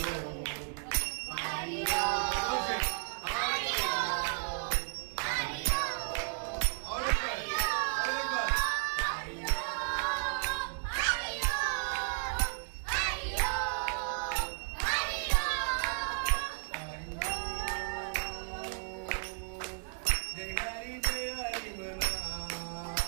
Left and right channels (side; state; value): left; silent; 55 dB below the other